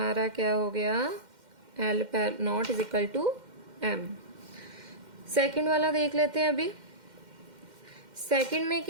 क्या हो गया, L not is equal to M. Second वाला देख लेते हैं अभी। सेकंड में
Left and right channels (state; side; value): late; left; 2.1 ms